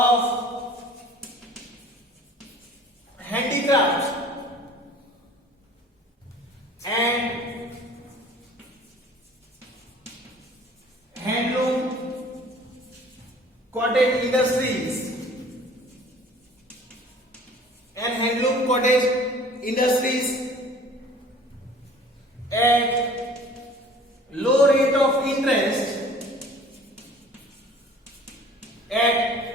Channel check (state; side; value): normal; both; correlation 0.49